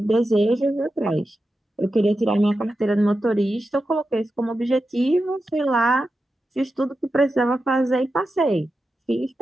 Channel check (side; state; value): both; normal; correlation 0.90